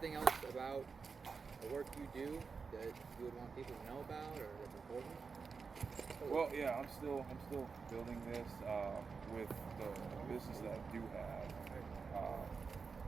else about the work you do that you would want people to know about or that's important? Well, yeah, I'm still building this with the business that I do have.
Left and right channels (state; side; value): quieter; left; 5.1 dB